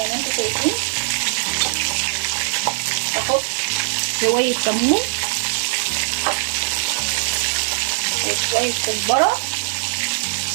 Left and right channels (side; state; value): left; silent; digital silence